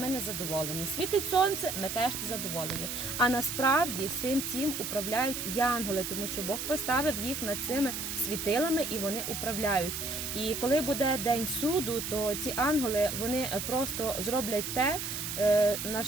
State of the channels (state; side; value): noise; right; hiss, 4 dB below the sound